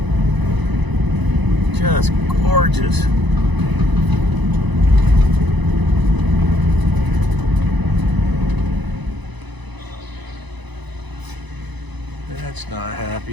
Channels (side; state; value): left; late; 1.0 ms